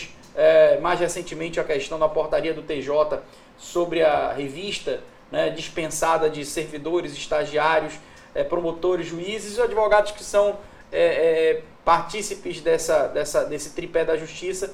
mais recentemente a questão da portaria do TJ sobre a revista, né, dispensada de servidores, estagiários, promotores, juízes e advogados que são partícipes desse tripé da justiça,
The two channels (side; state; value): both; identical; correlation 1.00